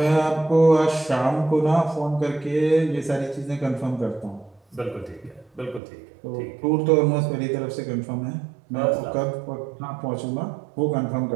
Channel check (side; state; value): left; drops out; at 5.8 s